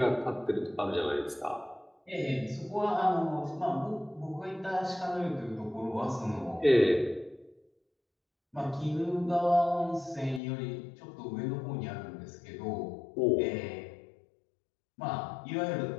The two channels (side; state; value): right; drops out; at 10.4 s